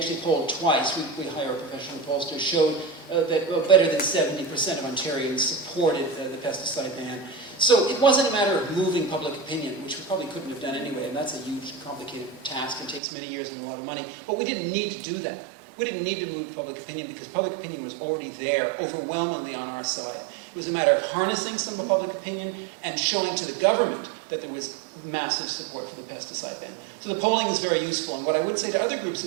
polled twice. We hire a professional pollster, showed that better than 70% of Ontarians supported the pesticide ban. So it wasn't a matter of moving public opinion, which we probably couldn't have done anyway, and that's a huge, complicated task and takes many years and a lot of money. But we didn't need to do that. We didn't need to move public opinion because public opinion was already there, overwhelmingly on our side. It was a matter of harnessing some of public opinion and showing to the government that there was massive support for the pesticide ban. So the polling is very useful, and what I would say to other groups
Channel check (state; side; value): drops out; left; at 13.0 s